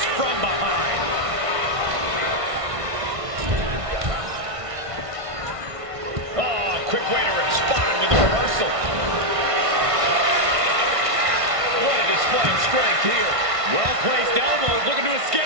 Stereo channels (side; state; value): left; late; 1.5 ms